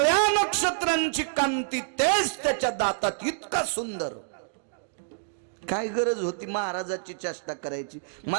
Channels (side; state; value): left; silent; digital silence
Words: नक्षत्रांची कांती तेच त्याच्या दातात. इतका सुंदर. काय गरज होती महाराजाची चेष्टा करायची.